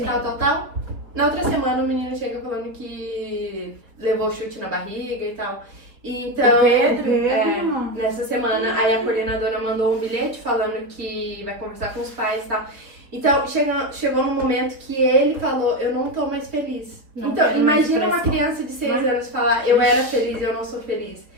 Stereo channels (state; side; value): late; left; 3.9 ms